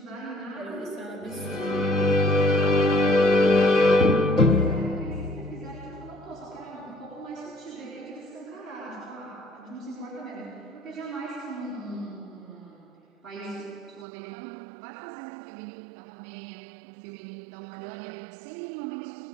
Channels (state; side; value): drops out; left; at 14.1 s